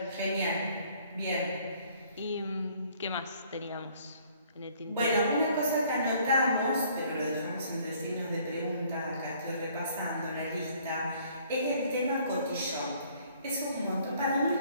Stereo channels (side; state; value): both; inverted; correlation -0.60